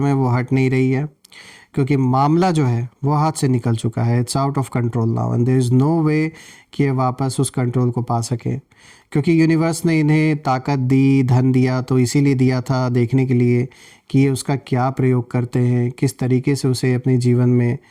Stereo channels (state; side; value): identical; both; correlation 1.00